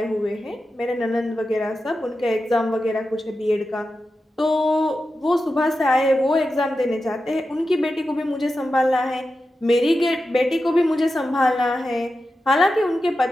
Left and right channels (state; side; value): normal; both; correlation 0.91